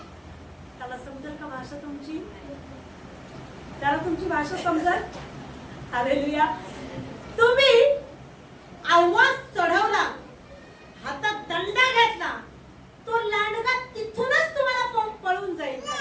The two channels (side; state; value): both; identical; correlation 1.00